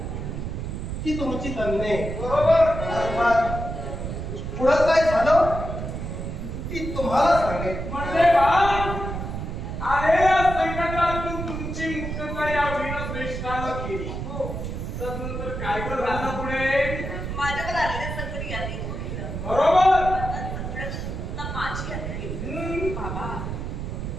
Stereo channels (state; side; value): noise; right; rumble, 5 dB below the sound